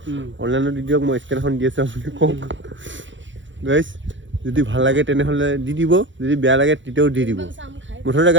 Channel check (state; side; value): late; left; 0.55 ms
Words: অনলাইনত দি দিয়ক মই স্কেন এখন দি আছোঁ আপুনি কওক গাইছ যদি ভাল লাগে তেনেহ'লে দি দিব যদি বেয়া লাগে তেতিয়াও দি দিব মুঠতে